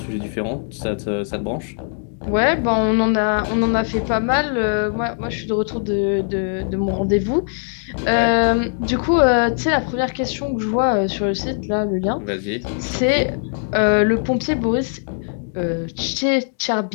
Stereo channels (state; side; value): silent; right; digital silence